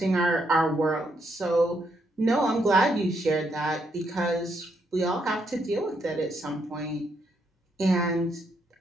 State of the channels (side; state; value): both; normal; correlation 0.76